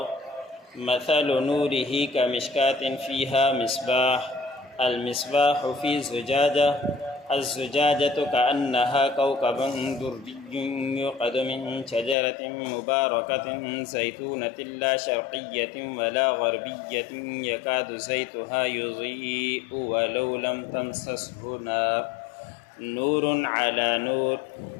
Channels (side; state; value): right; drops out; at 12.2 s